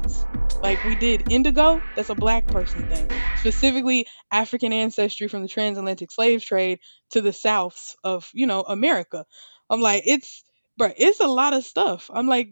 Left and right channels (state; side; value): inverted; both; correlation -1.00